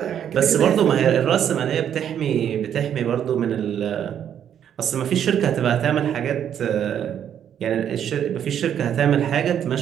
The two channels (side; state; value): left; quieter; 9.3 dB